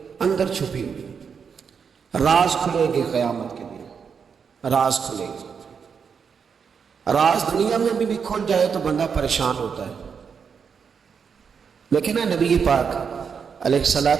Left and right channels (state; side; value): quieter; left; 6.4 dB